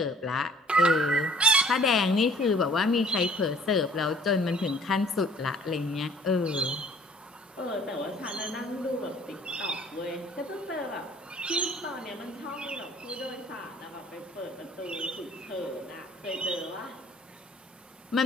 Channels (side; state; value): both; normal; correlation 0.55